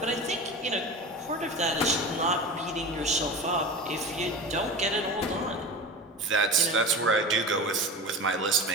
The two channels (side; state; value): both; normal; correlation 0.30